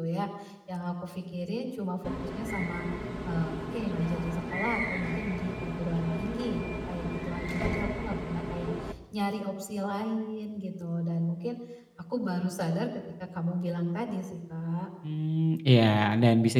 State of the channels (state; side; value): identical; both; correlation 1.00